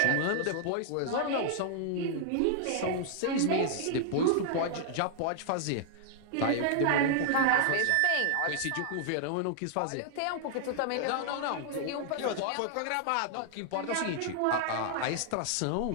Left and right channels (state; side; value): different; both; correlation -0.01